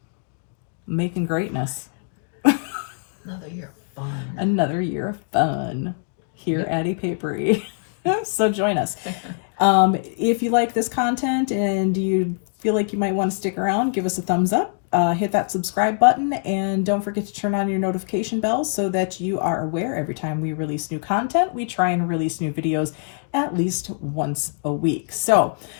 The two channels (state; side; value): silent; right; digital silence